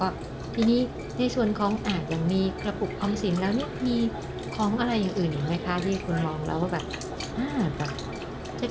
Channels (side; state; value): both; identical; correlation 1.00